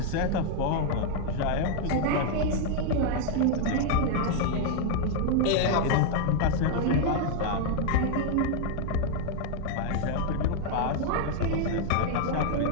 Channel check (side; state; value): both; different; correlation 0.00